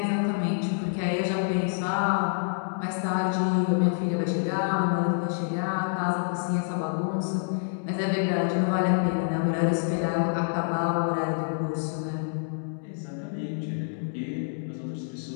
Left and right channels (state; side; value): silent; right; digital silence